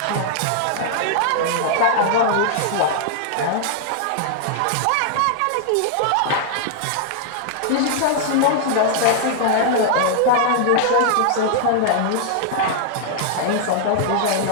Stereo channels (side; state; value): both; different; correlation -0.01